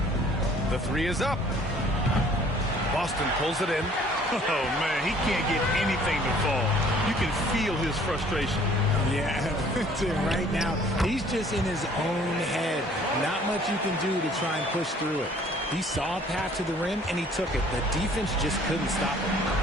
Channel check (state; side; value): normal; both; correlation 0.56